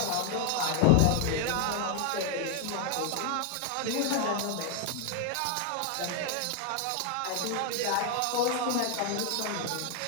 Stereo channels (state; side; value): different; both; correlation 0.00